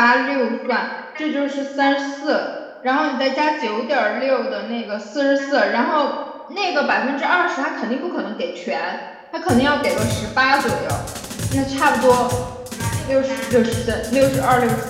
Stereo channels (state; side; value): identical; both; correlation 1.00